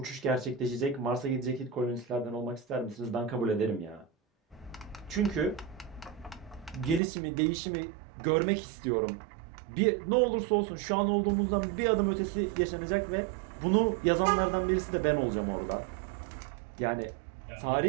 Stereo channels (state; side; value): drops out; left; at 7.0 s